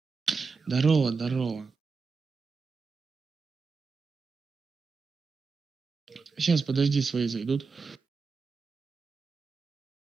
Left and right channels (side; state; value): left; quieter; 4.7 dB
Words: Здорово, здорово. Сейчас, подожди, свои зайдут.